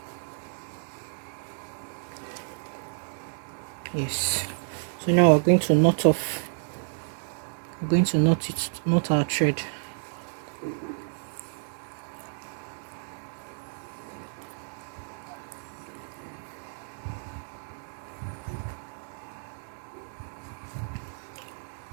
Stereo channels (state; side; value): silent; left; digital silence